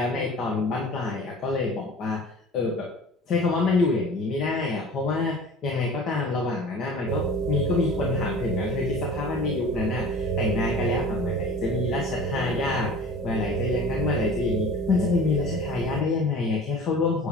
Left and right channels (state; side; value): normal; both; correlation 0.41